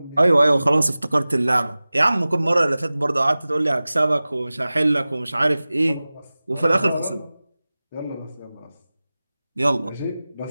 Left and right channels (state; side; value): inverted; both; correlation -0.98